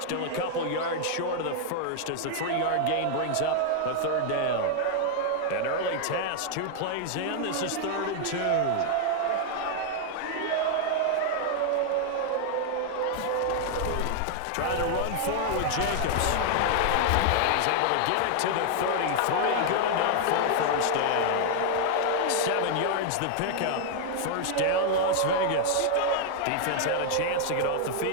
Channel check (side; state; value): both; different; correlation 0.00